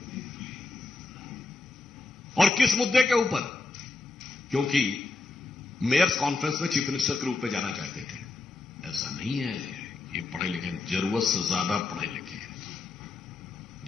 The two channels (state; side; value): quieter; right; 3.7 dB